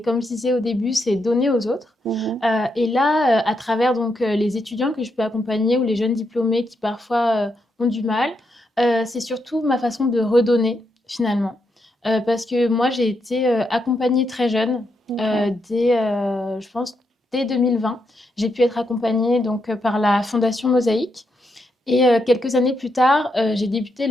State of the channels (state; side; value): normal; both; correlation 0.81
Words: comme je disais au début, c'est donner aux autres. Mhm. Et là, à travers donc, les étudiants que je peux accompagner ou les jeunes diplômés qui parfois, ont du mal, c'est surtout ma façon de redonner finalement. Parce que moi j'ai été, accompagnée très jeune, Ok. je pense dès 2020. J'ai pu être accompagnée donc, par la Fondation Mosaïque et quelques années plus tard, j'ai débuté